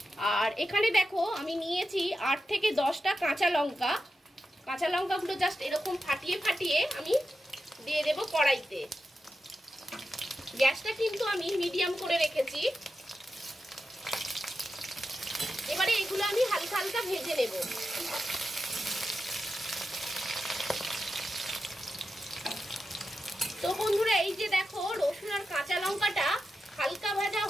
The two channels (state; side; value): normal; both; correlation 0.90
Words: আর এখানে দেখো আমি নিয়েছি 8 থেকে 10টা কাঁচা লঙ্কা। কাঁচা লঙ্কাগুলো জাস্ট এরকম ফাটিয়ে ফাটিয়ে আমি দিয়ে দেব কড়াইতে। গ্যাসটা কিন্তু আমি মিডিয়াম করে রেখেছি। এবারে এগুলো আমি হালকা হালকা ভেজে নেব। তো বন্ধুরা এই যে দেখো রসুন আর কাঁচা লঙ্কাটা হালকা ভাজা